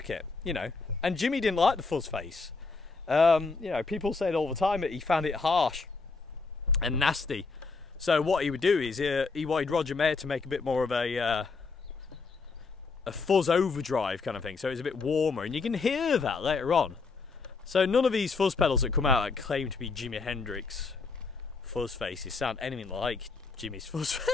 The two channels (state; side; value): quieter; right; 4.3 dB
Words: you know. And Jimmy didn't like the fuzz face. You know, people said all the time that he found it harsh and nasty. So what he would do is he wanted Roger Mayer to make a bit more of a fuzz overdrive kind of thing, so it was a bit warmer, and you can hear that later on. So none of these fuzz pedals that come out that claim to be Jimi Hendrix fuzz faces sound anything like Jimmy's fuzz